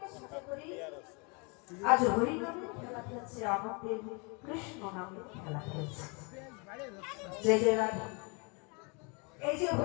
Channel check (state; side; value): quieter; right; 32.5 dB